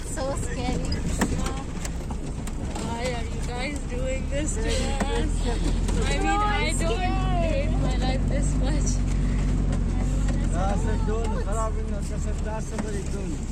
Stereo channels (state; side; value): identical; both; correlation 1.00